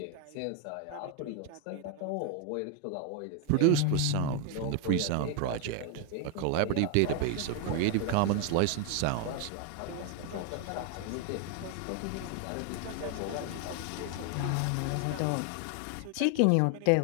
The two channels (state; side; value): different; both; correlation 0.01